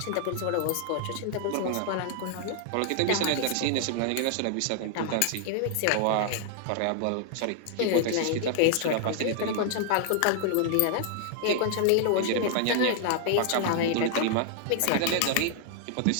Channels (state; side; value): different; both; correlation 0.00